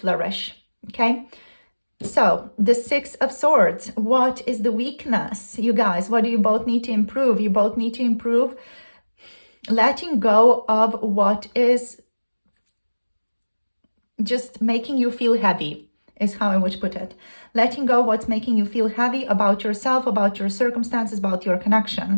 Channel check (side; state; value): both; inverted; correlation -1.00